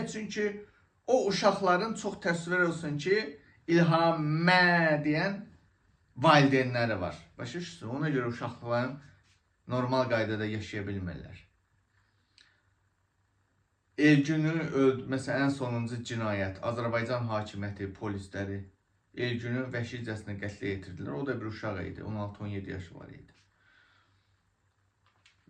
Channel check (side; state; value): both; identical; correlation 1.00